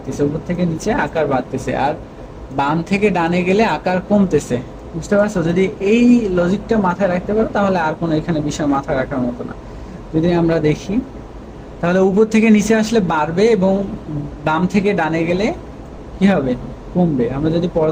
উপর থেকে নিচে আকার বাড়তেছে। আর বাম থেকে ডানে গেলে আকার কমতেছে। বুঝতে পারছো? যদি এই লজিকটা মাথায় রাখতে পারো তাহলে আর কোনো এখানে বিষয় মাথায় রাখার মতো না। যদি আমরা দেখি, তাহলে উপর থেকে নিচে আসলে বাড়বে এবং বাম থেকে ডানে গেলে কি হবে? কমবে। আমরা যদি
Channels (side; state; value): both; identical; correlation 1.00